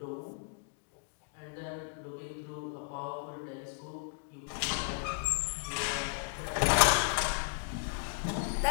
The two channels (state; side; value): silent; right; digital silence